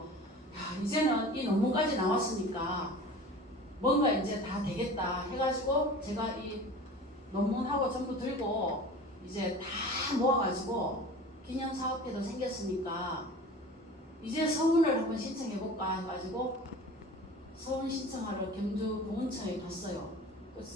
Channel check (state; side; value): normal; both; correlation 0.39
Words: 이제는 이 논문까지 나왔으니까 뭔가 이제 다 되겠다 해가지고 제가 이 논문하고 전부 들고 이제 다 모아가지고 기념사업회도 생겼으니까 이제 서문을 한번 신청해볼까 해가지고 서문 신청하러 경주 보훈처에 갔어요. 그